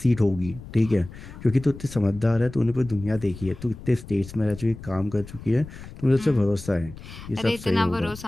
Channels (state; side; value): noise; left; rumble, 15 dB below the sound